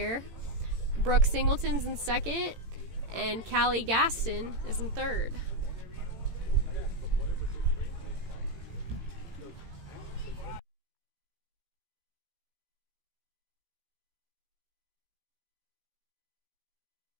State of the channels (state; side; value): late; left; 18 ms